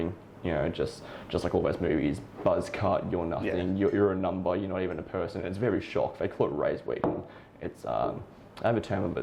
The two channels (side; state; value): both; identical; correlation 1.00